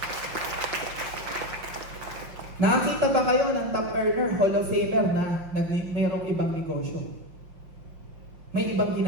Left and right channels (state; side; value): late; left; 5.7 ms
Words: Nakakita ba kayo ng top earner, Hall of Famer na mayroong ibang negosyo? May ibang